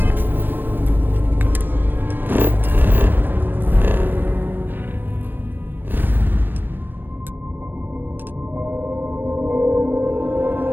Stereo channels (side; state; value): left; late; 0.094 ms